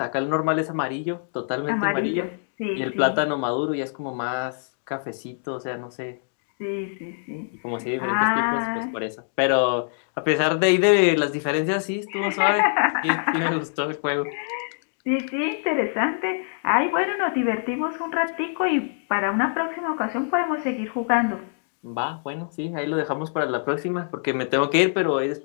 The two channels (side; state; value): right; silent; digital silence